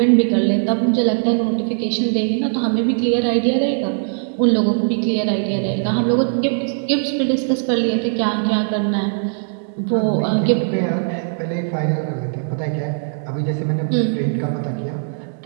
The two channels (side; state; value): left; silent; digital silence